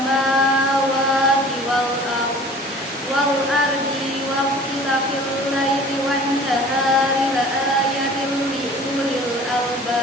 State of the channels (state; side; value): normal; both; correlation 0.46